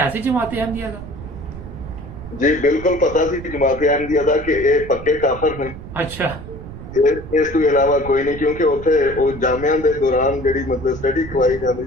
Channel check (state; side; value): noise; right; rumble, 13 dB below the sound